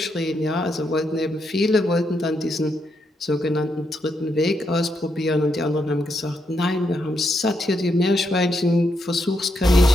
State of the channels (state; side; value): normal; both; correlation 0.80